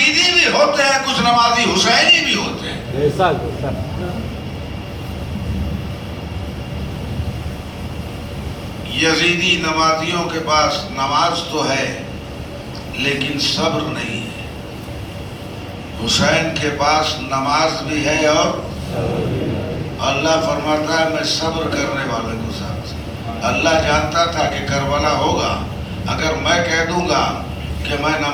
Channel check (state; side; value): identical; both; correlation 1.00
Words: بھی ہوتے ہیں، کچھ نمازی حسینی بھی ہوتے ہیں۔ یزیدی نمازیوں کے پاس نماز تو ہے لیکن صبر نہیں ہے، حسین کے پاس نماز بھی ہے اور اللہ فرماتا ہے میں صبر کرنے والے کو ساتھ۔ اللہ جانتا تھا کہ کربلا ہوگا، اگر میں کہہ دوں گا کہ میں